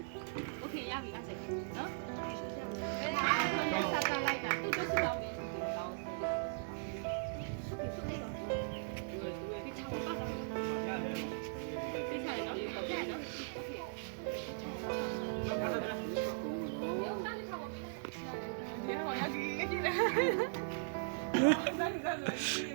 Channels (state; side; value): silent; left; digital silence